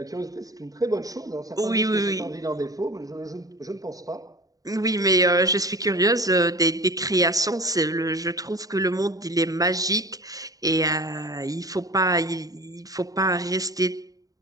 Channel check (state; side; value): late; left; 0.18 ms